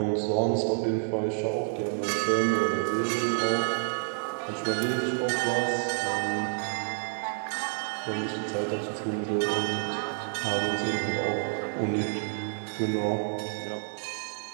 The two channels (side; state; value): left; silent; digital silence